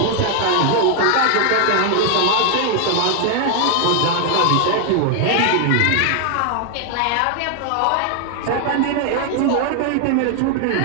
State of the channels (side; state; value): both; different; correlation 0.00